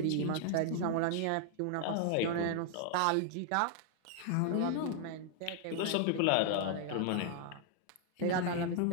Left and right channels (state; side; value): different; both; correlation 0.00